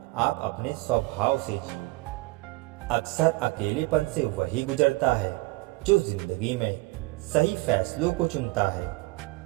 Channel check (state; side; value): quieter; left; 22.6 dB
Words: आप अपने स्वभाव से जियो। अक्सर अकेलेपन से वही गुजरता है जो जिंदगी में सही फैसलों को चुनता है।